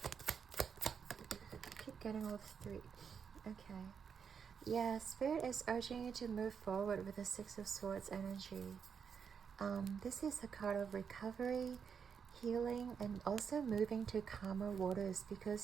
I keep getting all the 3. Okay. Yeah, Spirit is urging you to move forward with the 6 of Swords energy. This is a card of recovery, healing, and also moving to calmer waters,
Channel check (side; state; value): left; quieter; 6.8 dB